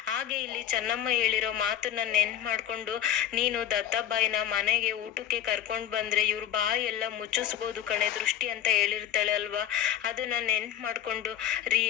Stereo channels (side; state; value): right; quieter; 10.7 dB